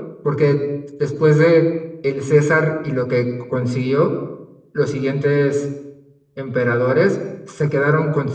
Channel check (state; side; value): identical; both; correlation 1.00